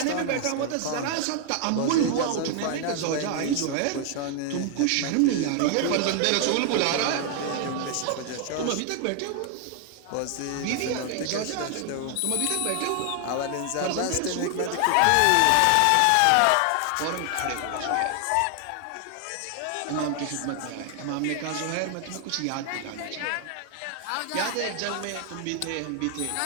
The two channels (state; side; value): different; both; correlation 0.00